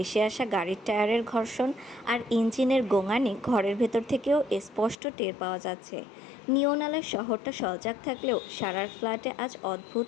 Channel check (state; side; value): drops out; right; at 5.0 s